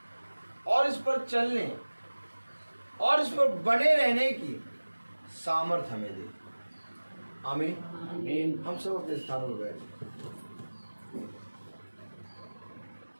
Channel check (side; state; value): both; inverted; correlation -1.00